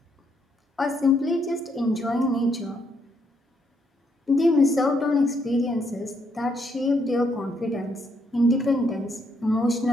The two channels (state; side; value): normal; both; correlation 0.74